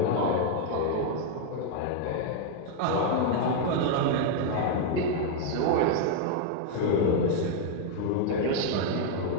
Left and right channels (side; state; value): both; different; correlation 0.00